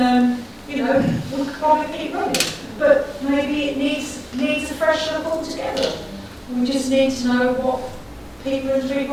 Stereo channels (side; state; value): both; identical; correlation 1.00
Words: we could probably keep running. But maybe it needs a fresh look altogether. We just need to know what people in